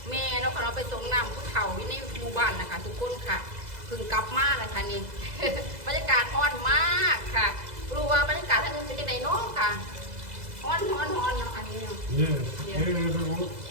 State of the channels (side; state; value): left; late; 2.0 ms